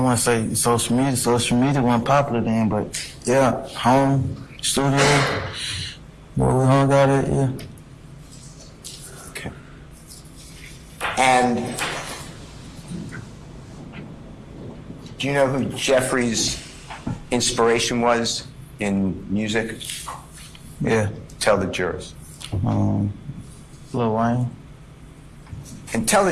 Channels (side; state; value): both; identical; correlation 1.00